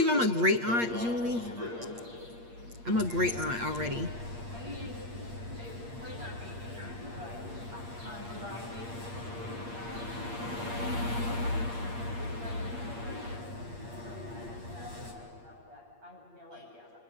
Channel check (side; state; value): left; late; 8.5 ms